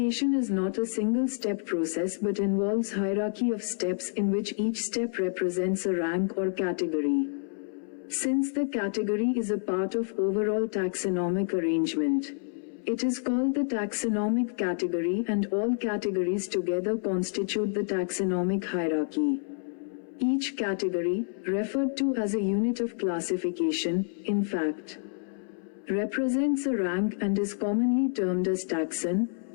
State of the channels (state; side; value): silent; right; 59 dB below the other